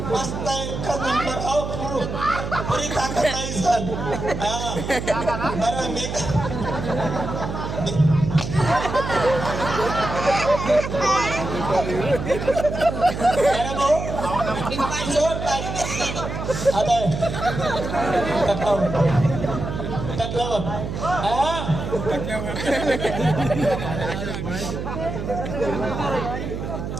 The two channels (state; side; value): noise; right; hum, 5 dB below the sound